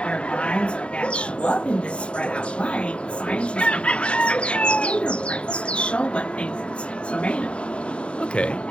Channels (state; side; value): late; right; 0.057 ms